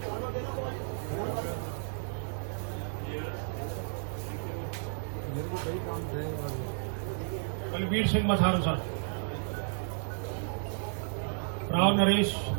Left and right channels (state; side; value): silent; left; digital silence